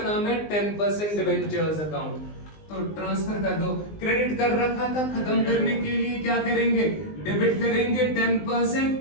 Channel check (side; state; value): right; late; 19 ms